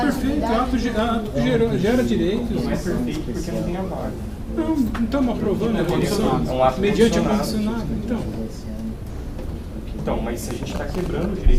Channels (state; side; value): identical; both; correlation 1.00